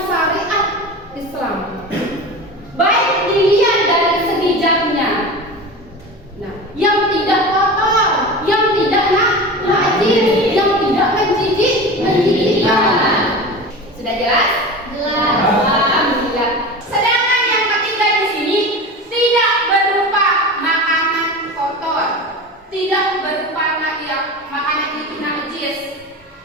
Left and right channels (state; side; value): normal; both; correlation 0.30